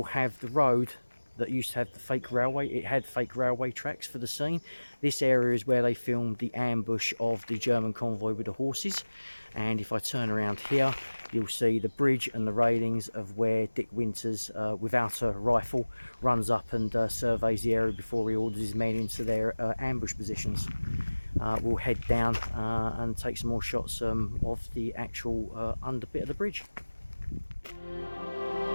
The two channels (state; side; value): inverted; both; correlation -1.00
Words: have the road that used to have the fake railway. It had fake railway tracks for the scene. This area is where they filmed the ambush of the German convoy with the horses. And if I turn around here, you'll see the bridge and the railings of where Dick Winters, without a rifle, runs up and surveys the area before he orders his men into their ambush positions. We'll head down and take some more shots of the actual under bit of the bridge.